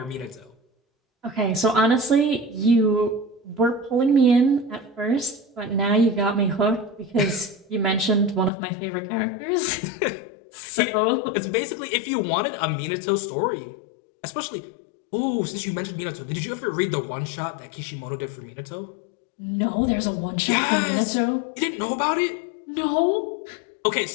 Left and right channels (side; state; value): right; drops out; at 8.5 s